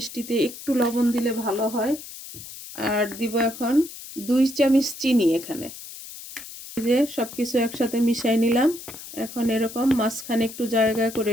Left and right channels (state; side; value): noise; left; hiss, 13 dB below the sound